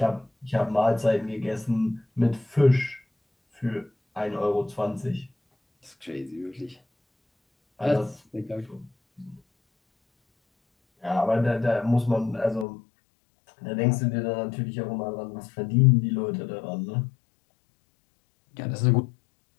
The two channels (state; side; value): drops out; right; at 12.7 s